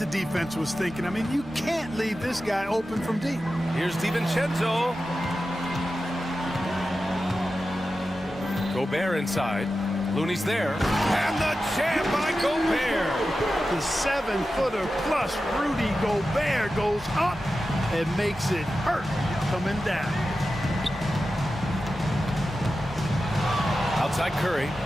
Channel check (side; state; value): both; normal; correlation 0.92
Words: defense was thinking. I mean, you can't leave this guy open from deep. Here's DiVincenzo. Gobert inside. Looney's there. And the jam by Gobert. The 7-footer plus Rudy Gobert goes up and makes it hurt coming down. Outside Curry.